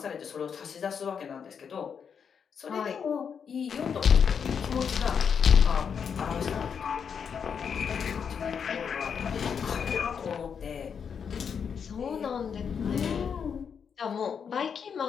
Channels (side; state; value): right; quieter; 6.9 dB